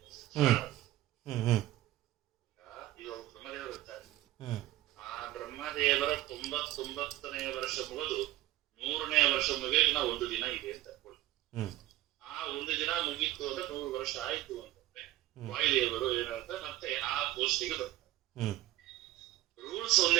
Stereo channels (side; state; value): left; quieter; 15.6 dB